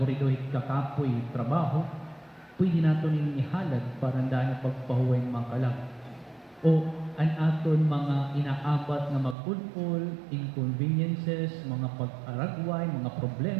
kakapoy trabaho pwede naton ning ihalad para daan pagpahuway makalag o ang aton mga inaabat nga magpulpul, inconveniences, mga pag-aragway, mga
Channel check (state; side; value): drops out; left; at 9.3 s